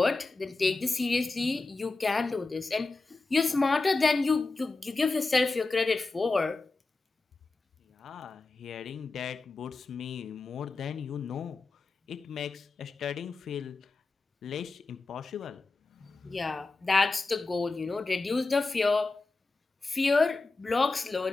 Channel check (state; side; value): quieter; right; 3.6 dB